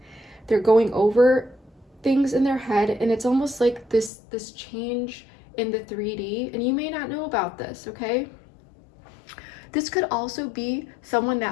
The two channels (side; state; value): right; drops out; at 4.1 s